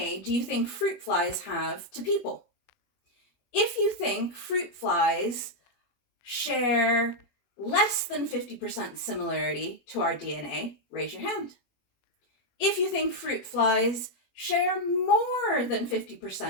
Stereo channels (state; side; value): late; right; 21 ms